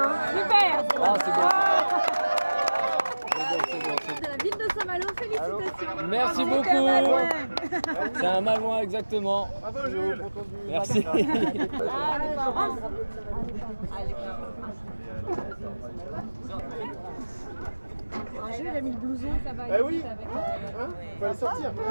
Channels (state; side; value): inverted; both; correlation -1.00